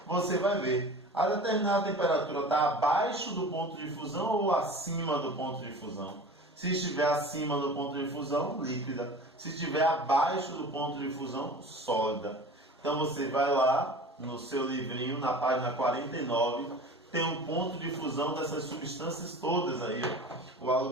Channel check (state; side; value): normal; both; correlation 0.38